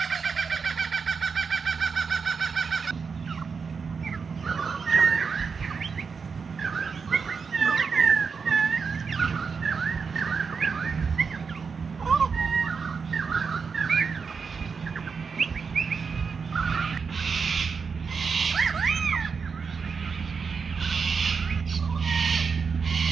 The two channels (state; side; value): quieter; left; 5.5 dB